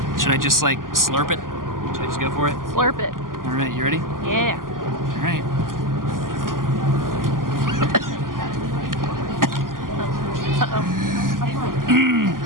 Should I just like slurp it? Should I just go for it? Slurp it. All right, you ready? Yeah. All right.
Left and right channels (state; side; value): late; left; 0.91 ms